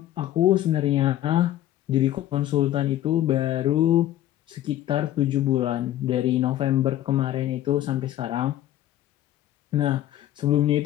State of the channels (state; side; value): quieter; right; 13.2 dB